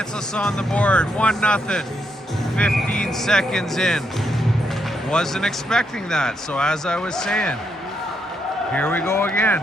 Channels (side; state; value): both; normal; correlation 0.78